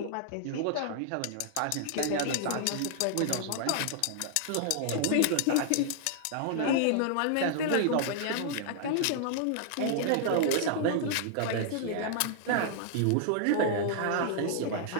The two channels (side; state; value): both; different; correlation -0.01